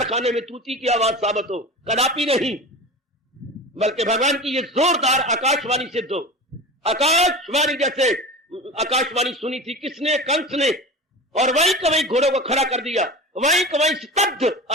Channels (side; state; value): both; normal; correlation 0.31